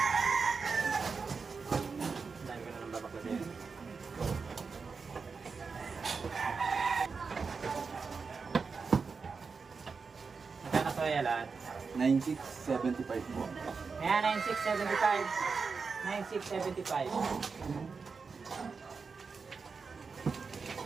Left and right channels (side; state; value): left; quieter; 5.0 dB